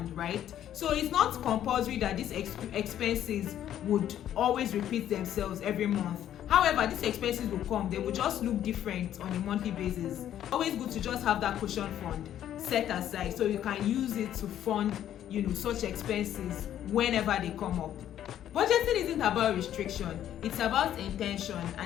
right? So it's not compulsory that these expenses would always repeat themselves every month. However, these expenses will come, they will just look different on a monthly basis. Always good to just have that cushion fund set aside so you can use it to fund, such expenses whenever they come up. Budgeting isn't about restriction, it's about intention,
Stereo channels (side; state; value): right; quieter; 11.1 dB